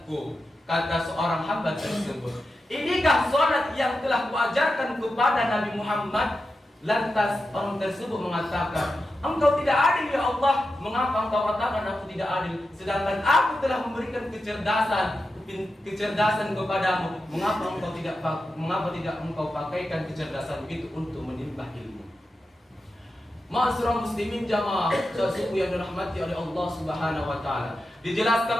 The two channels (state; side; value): normal; both; correlation 0.90